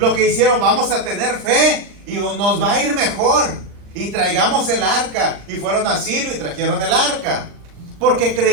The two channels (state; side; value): late; left; 39 ms